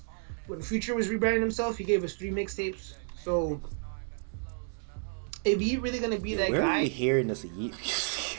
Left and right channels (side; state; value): left; silent; 57 dB below the other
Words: When Future was rebranding himself, he gave us 3 mixtapes. So if he really gonna be that guy, where are you hearing this Yeet